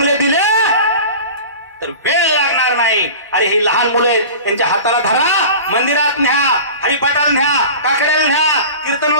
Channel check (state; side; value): inverted; both; correlation -0.36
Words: दिले तर वेळ लागणार नाही. अरे ही लहान मुलं आहेत, त्यांच्या हाताला धरा, मंदिरात न्या, हरिपाठाला न्या, काकड्याला न्या,